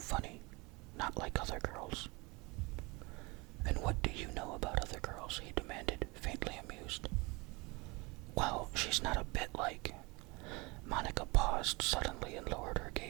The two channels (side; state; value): left; quieter; 26.1 dB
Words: Not like other girls." "And what do you know about other girls?" he demanded, faintly amused. "Well, she's not a bit like..." Monica paused suddenly and lowered her